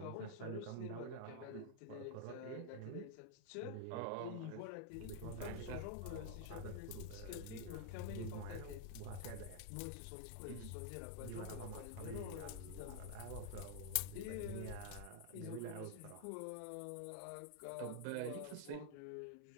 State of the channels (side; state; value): both; different; correlation -0.01